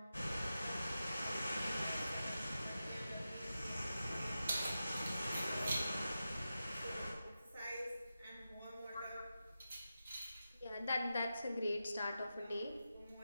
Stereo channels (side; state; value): both; inverted; correlation -0.91